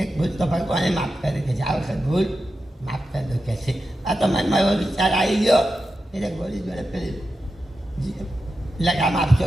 એક ભૂલ તો ભગવાને માફ કરે કે આ વખત ભૂલ માફ કરી દો કે છે. આ તો મનમાં એવો વિચાર આવી ગયો એટલે ગોળી જોડે પેલી લગામ આપશો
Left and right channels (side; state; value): both; normal; correlation 0.90